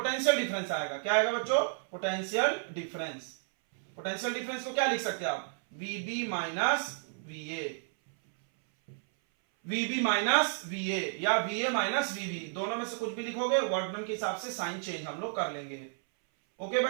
डिफरेंस आएगा। क्या आएगा बच्चों? Potential difference. पोटेंशियल डिफरेंस को क्या लिख सकते हैं आप? वीबी माइनस वीए, वीबी माइनस वीए, या वीए माइनस वीबी, दोनों में से कुछ भी लिखोगे, वर्क डन के हिसाब से साइन चेंज हम लोग कर लेंगे। ओके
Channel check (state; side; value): silent; left; 56 dB below the other